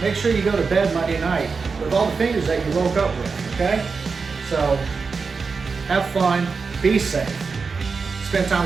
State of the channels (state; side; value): quieter; left; 4.9 dB